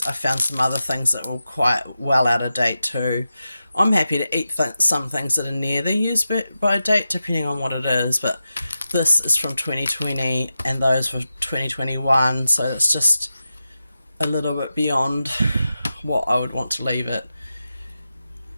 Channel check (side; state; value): both; inverted; correlation -0.91